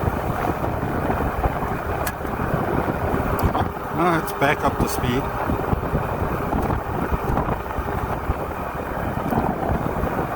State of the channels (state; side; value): identical; both; correlation 1.00